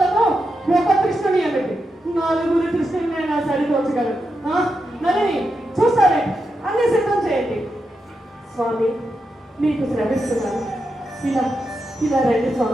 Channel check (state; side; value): normal; both; correlation 0.86